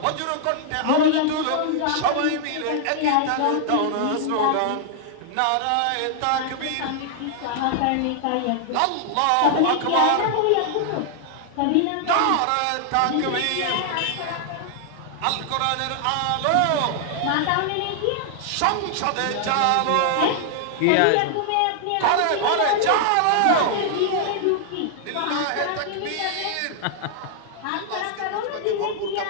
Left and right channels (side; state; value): both; different; correlation -0.01